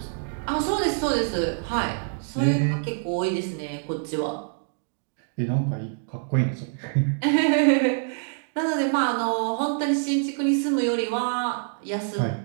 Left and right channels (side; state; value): left; silent; digital silence